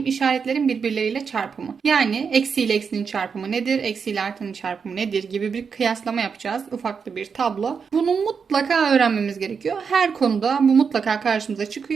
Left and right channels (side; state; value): left; quieter; 6.0 dB